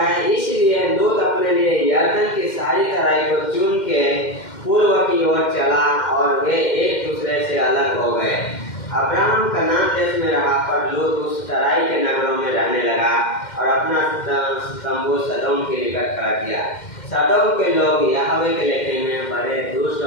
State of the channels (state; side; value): late; right; 2.1 ms